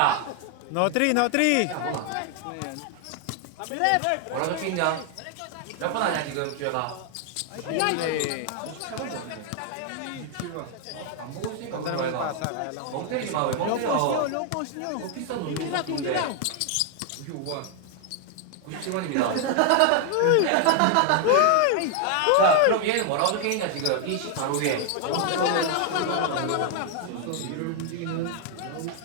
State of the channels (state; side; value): different; both; correlation 0.00